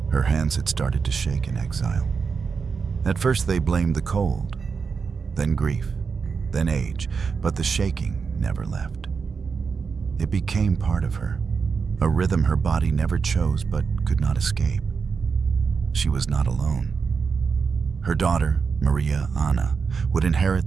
Her hands had started to shake in exile. At first they blamed the cold, then grief, then age, but the shaking never left. It became part of her, a rhythm her body never chose but could not escape. She was not alone. Her daughter, Maria Anna, would inherit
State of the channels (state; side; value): quieter; left; 5.5 dB